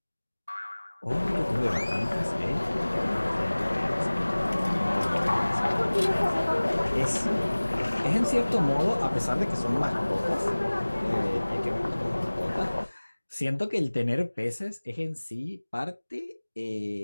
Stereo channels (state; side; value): inverted; both; correlation -1.00